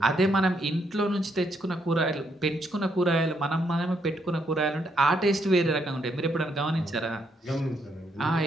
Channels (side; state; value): both; normal; correlation 0.75